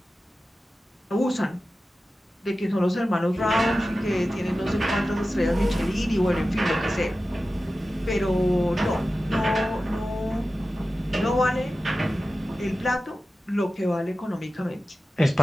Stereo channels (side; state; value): both; normal; correlation 0.94